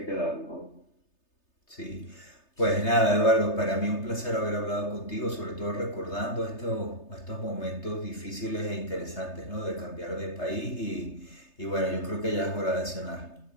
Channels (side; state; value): right; late; 3.3 ms